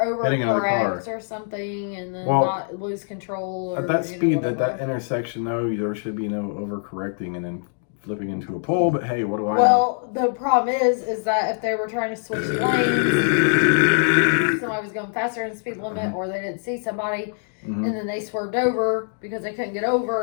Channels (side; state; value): right; silent; 56 dB below the other